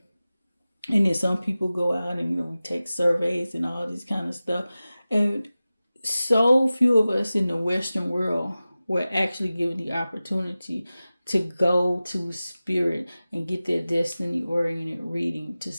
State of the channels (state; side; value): inverted; both; correlation -0.96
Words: And then some people go out and, we take surveys and all this kind of stuff. And so few of us in the Western world were actually given the opportunity to go to spirit and get that destiny-oriented reading to